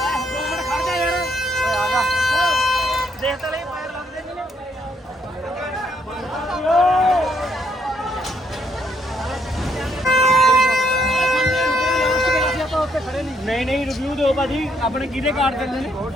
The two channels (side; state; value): both; normal; correlation 0.72